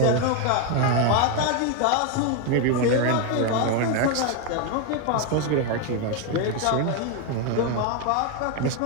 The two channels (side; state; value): both; different; correlation 0.01